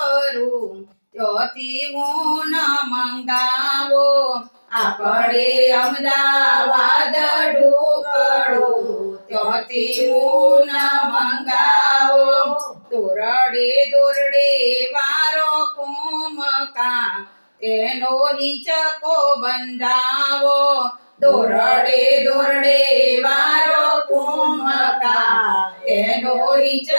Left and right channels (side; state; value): both; inverted; correlation -1.00